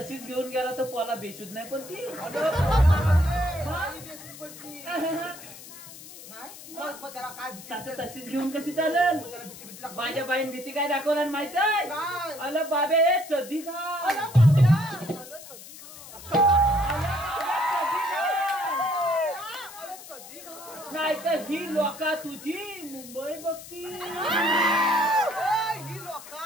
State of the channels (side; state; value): left; noise; hiss, 15 dB below the sound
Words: घेऊन गेला तर पोला बेशुद्ध नाही पण ती अगं, पोरामध्ये बाई बेसून पडली. नाही? मग त्याला काय भीती आता वाटते? तशीच घेऊन कशी चालेल त्याला भीती लागते. माझ्या बाईन भीती काय दाखवला माहित आहे काय? अल बाबे चदी खा अरे बाबड्या. अरे चड्डी खा. अरे चड्डी खा. नाही तर ही लोका तुझी मुंबई बघती ए, ही